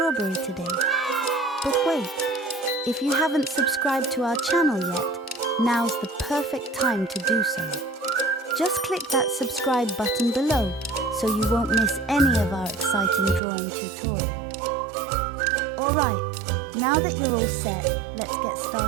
today? But wait, if you haven't subscribed to our channel yet, now's the perfect time to do so. Just click that subscribe button below so you won't miss any of our exciting drawing tutorials. Alright, now that you're all set, let's get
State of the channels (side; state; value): left; drops out; at 13.4 s